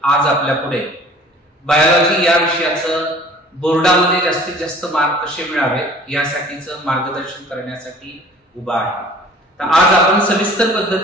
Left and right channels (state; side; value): normal; both; correlation 0.50